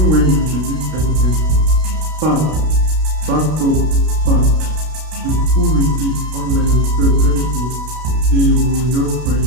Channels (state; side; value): late; left; 32 ms